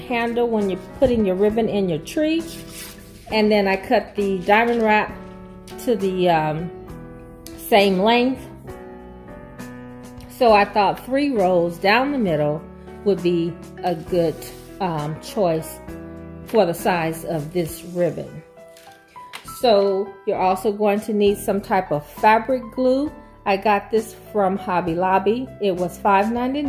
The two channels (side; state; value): both; identical; correlation 1.00